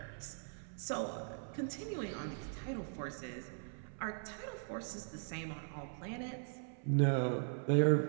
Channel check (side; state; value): left; silent; 51 dB below the other